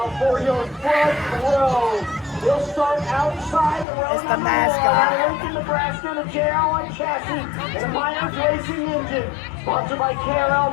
for your front row, we'll start outside the row. It's the mascot. Lincoln, Nebraska, and a JR1 chassis and a Myers Racing Engine. Sponsored by KRL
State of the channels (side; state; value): right; drops out; at 3.9 s